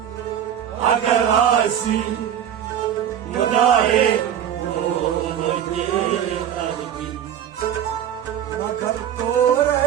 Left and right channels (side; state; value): left; quieter; 9.8 dB